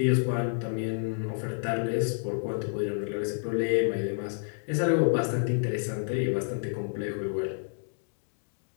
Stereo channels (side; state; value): right; silent; digital silence